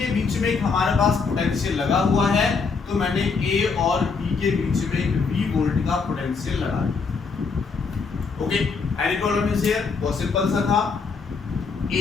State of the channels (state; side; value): quieter; right; 4.9 dB